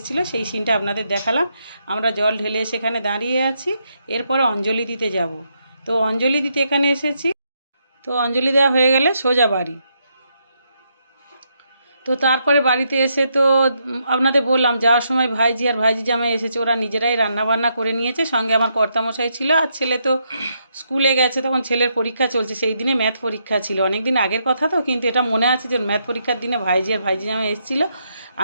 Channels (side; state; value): both; inverted; correlation -0.78